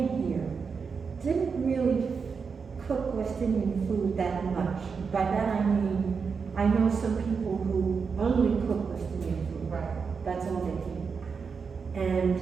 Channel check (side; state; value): left; quieter; 5.5 dB